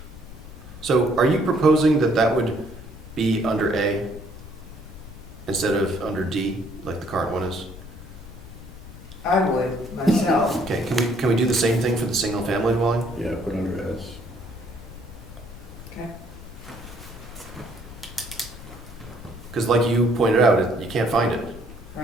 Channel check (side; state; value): left; noise; rumble, 17 dB below the sound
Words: so are you proposing that that would be under A instead of under D, like the current one is? I would, myself. Okay, can we do the same thing for the single-family dwelling? Yeah, put under S. Okay. Because like you pointed out, you can't find it.